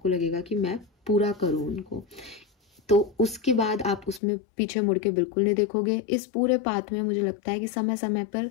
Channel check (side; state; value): right; drops out; at 4.2 s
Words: लगेगा कि मैं पूरा करूं उनको। तो उसके बाद आप उसमें पीछे मुड़ के बिल्कुल नहीं देखोगे। इस पूरे पाथ में मुझे लगता है कि समय समय पर,